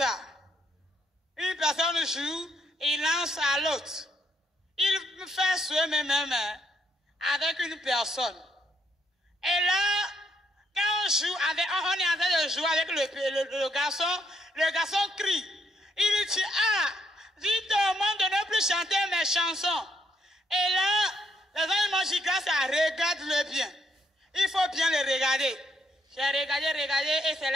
Une personne joue, il lance à l'autre. Il fait ce même avec une personne. Et là, quand on joue avec, on est en train de jouer avec le garçon crie. Il dit, ah, dites au monde de ne plus chanter mes chansons. Et là, les gens m'ont dit, grâce à regarde-le bien. Il faut bien le regarder. J'ai regardé, et c'est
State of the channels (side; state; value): both; normal; correlation 0.74